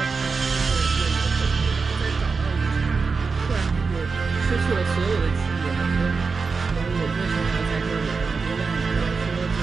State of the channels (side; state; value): left; quieter; 4.7 dB